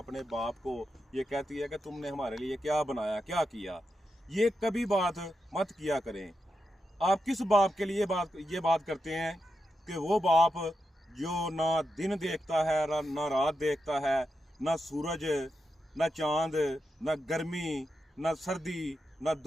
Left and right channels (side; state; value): both; normal; correlation 0.87